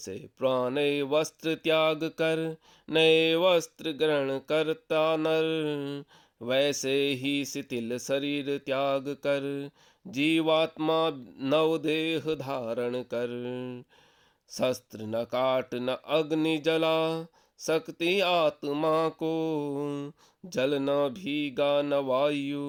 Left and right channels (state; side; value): identical; both; correlation 1.00